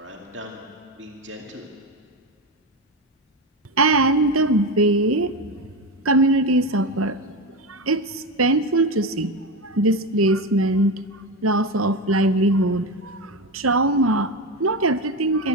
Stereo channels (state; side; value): normal; both; correlation 0.17